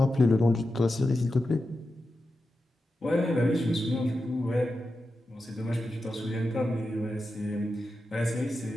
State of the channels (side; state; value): both; normal; correlation 0.90